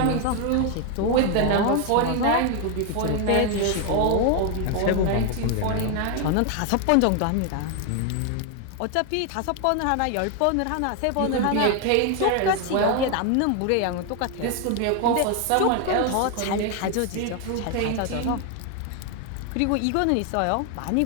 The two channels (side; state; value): both; different; correlation 0.01